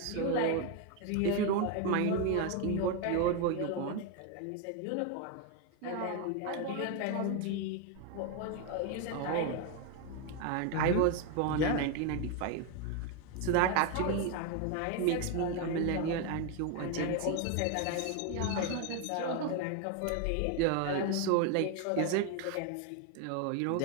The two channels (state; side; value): different; both; correlation 0.01